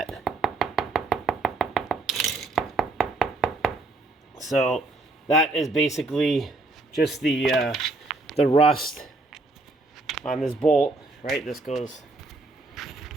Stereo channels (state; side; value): quieter; left; 3.1 dB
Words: So that is basically just the rust on this bolt, right? This goes